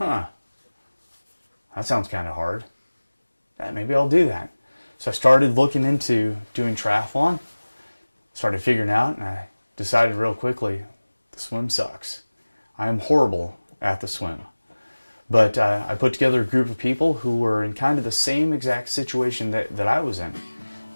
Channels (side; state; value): both; inverted; correlation -1.00